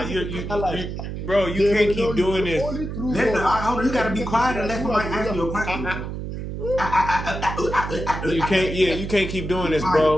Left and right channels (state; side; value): noise; right; hum, 6 dB below the sound